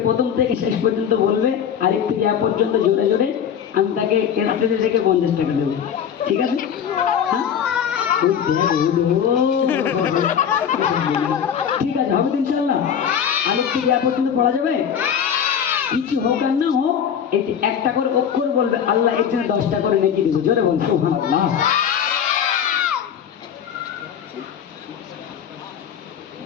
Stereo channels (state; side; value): quieter; right; 8.3 dB